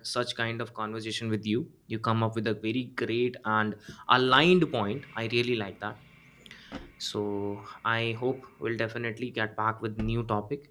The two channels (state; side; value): identical; both; correlation 1.00